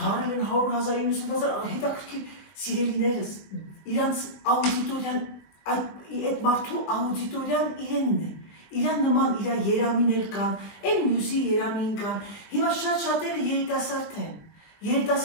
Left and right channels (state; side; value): late; right; 20 ms